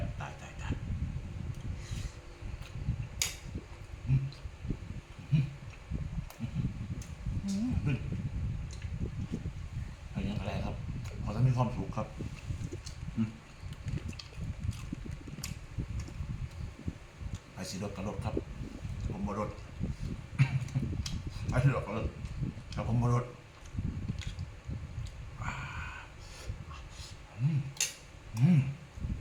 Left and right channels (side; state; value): both; identical; correlation 1.00